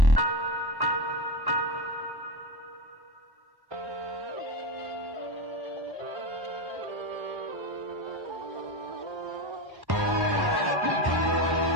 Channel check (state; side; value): late; left; 1.1 ms